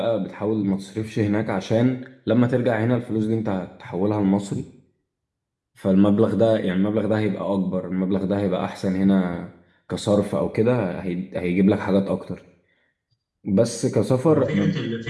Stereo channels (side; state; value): both; identical; correlation 1.00